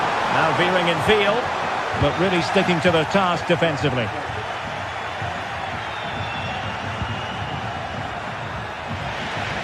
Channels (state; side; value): identical; both; correlation 1.00